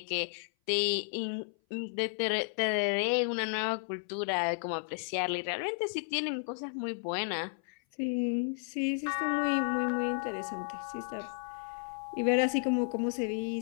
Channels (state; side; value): silent; right; 56 dB below the other